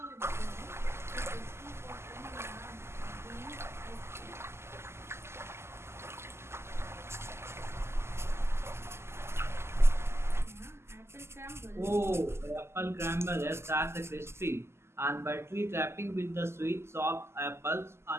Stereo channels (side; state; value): left; late; 0.12 ms